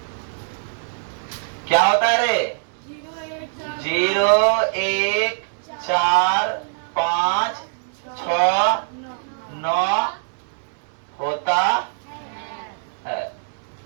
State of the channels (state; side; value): silent; left; digital silence